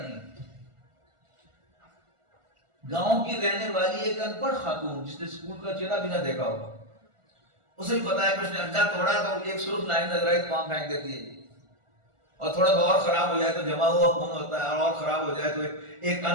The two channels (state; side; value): late; left; 1.4 ms